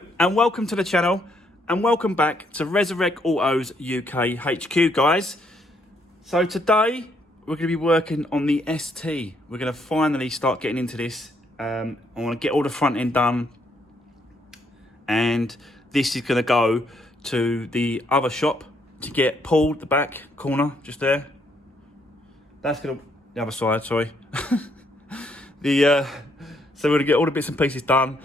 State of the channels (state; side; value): normal; both; correlation 0.72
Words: and welcome to the channel and welcome back to Resurwreck Autos UK HQ, guys. So today we're going to be working on the ST. We're going to finally start getting into this. I want to get all the front end done, and this is going to go to the other shop to get pulled, the back corner just there. That's going to the other side, sorry. So we're going to get all the bits and pieces done,